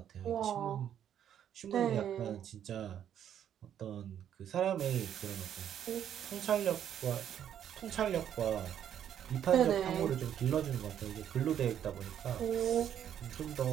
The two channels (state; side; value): quieter; left; 9.8 dB